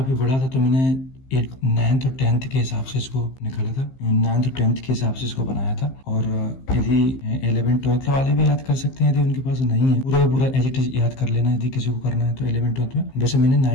बड़ा था तो मैंने 9th और 10th के हिसाब से इसको निकाला था, 9th और 10th के हिसाब से इसको बनाया था। और यदि 11th 12th वाले भी याद कर सकते हैं, यदि उनके पास नहीं है पूरा एज इट इज याद कर लेना यदि किसी को करना है तो 11th 12th में। वैसे मैंने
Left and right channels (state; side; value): late; right; 15 ms